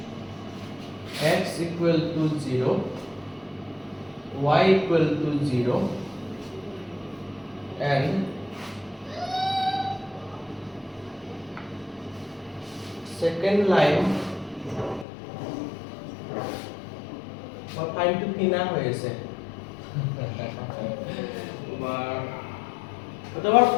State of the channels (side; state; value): right; drops out; at 15.1 s